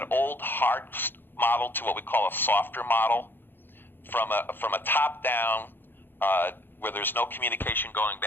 old hard model to what we call a softer model, from a top down where there's no communication going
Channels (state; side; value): late; right; 0.098 ms